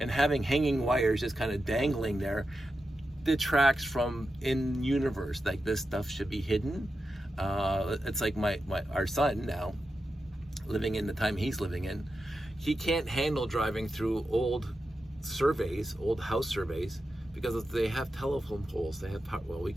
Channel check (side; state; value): both; normal; correlation 0.90